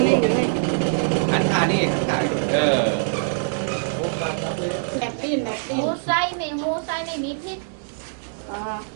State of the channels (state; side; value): silent; left; digital silence